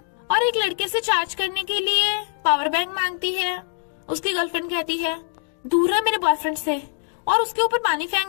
और एक लड़के से चार्ज करने के लिए पावर बैंक मांगती है। उसकी गर्लफ्रेंड कहती है, दूर है मेरे बॉयफ्रेंड से, और उसके ऊपर पानी फेंक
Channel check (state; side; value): silent; right; digital silence